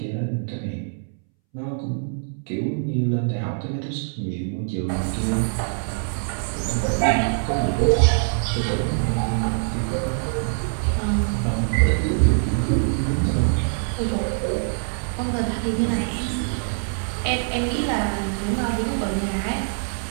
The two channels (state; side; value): silent; left; 63 dB below the other